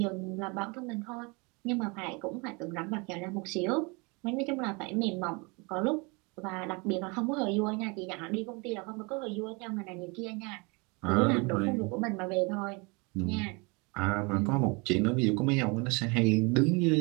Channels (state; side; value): quieter; left; 29.1 dB